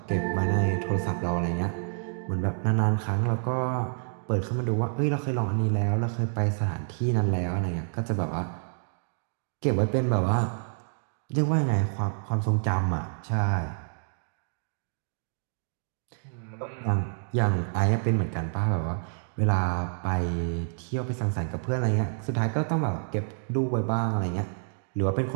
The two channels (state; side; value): silent; left; 59 dB below the other